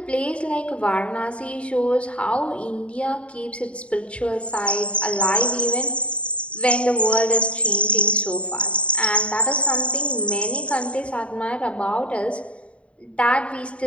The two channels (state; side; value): late; right; 0.061 ms